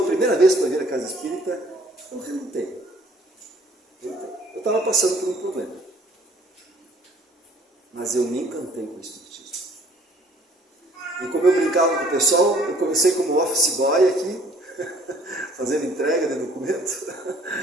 a primeira vez para vir à casa espírita, eu relutei. Eu estava passando por um problema. Mas eu me encantei com o espiritismo. E como eu brincava com o pessoal, eu comecei como office boy aqui, fazendo entrega de documento.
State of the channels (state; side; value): normal; both; correlation 0.57